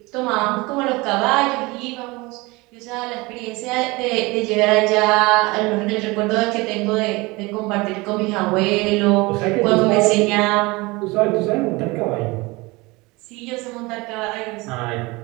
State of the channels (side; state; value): left; quieter; 23.7 dB